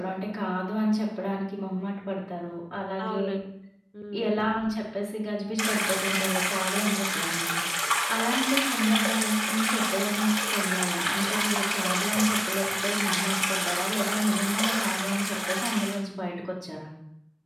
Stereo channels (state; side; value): identical; both; correlation 1.00